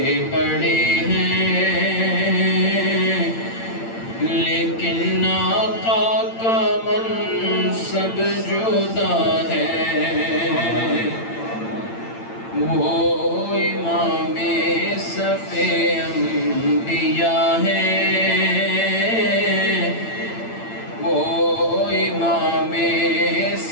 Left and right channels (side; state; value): right; late; 8.8 ms